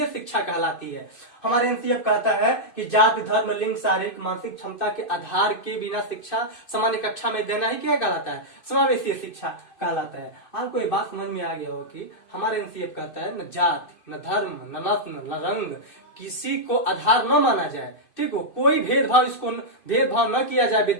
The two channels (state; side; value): late; right; 2.5 ms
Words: शिक्षा कहलाती है। हमारे एनसीएफ कहता है कि जाति, धर्म, लिंग, शारीरिक मानसिक क्षमता के आधार के बिना शिक्षा सामान्य कक्षा में देना ही क्या कहलाता है, समावेशी शिक्षा कहलाता है। आपको ये बात समझ में आ गया हो कि हमारे एनसीएफ कहता है न जाति, न धर्म, न नस्ल, न रंग, किसी को आधार न माना जाए। ठीक हो, कोई भेदभाव, इसको भेदभाव न किया जाए